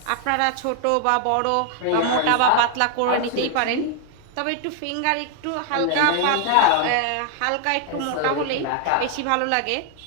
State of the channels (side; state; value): both; different; correlation 0.00